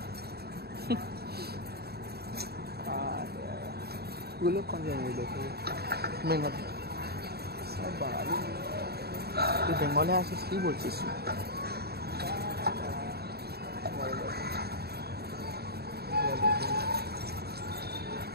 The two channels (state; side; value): late; left; 0.46 ms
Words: वो लोग कौन जाएंगे देखो बंगाली सब बंगाली ये बंगाली আসিস কি বলছিস